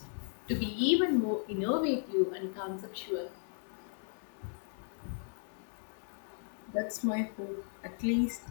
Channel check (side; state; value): right; silent; 54 dB below the other